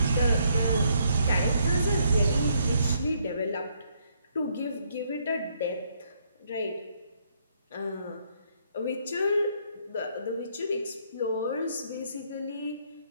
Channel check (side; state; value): both; inverted; correlation -0.70